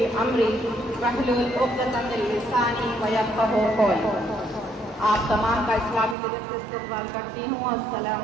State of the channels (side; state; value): left; drops out; at 6.2 s